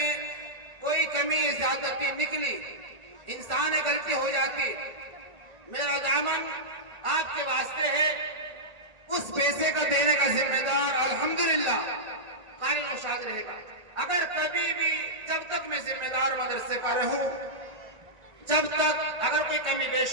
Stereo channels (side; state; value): left; late; 1.9 ms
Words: कोई कमी ज्यादती निकली, इंसान गलती हो जाती, मेरा दामन आपके वास्ते है। उस पैसे का देने का जिम्मेदार अल्हम्दुलिल्लाह कारी नौशाद रहेगा। अगर कभी भी, जब तक मैं जिम्मेदार मदरसे का रहूं, जब तक अगर कोई कमी